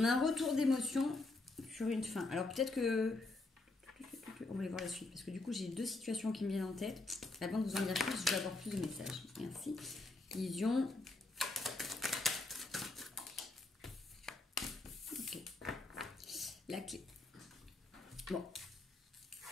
a un retour d'émotion sur une fin. Alors peut-être que... On va aller voir la suite. Parce que du coup, j'ai deux situations qui me viennent en tête. Avant de vous en dire plus, je vais avoir plus de messages. Merci. Vision. Ok. La clé. Bon.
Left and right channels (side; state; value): right; quieter; 3.1 dB